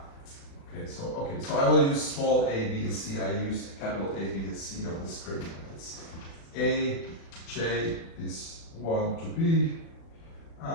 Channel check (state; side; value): late; right; 36 ms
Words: Okay, so I will use small a, b, and c. I use capital A, B, and C on the screen. It's A, J is 1 to B,